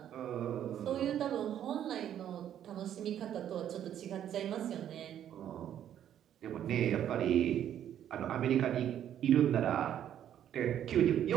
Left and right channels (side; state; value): left; quieter; 10.4 dB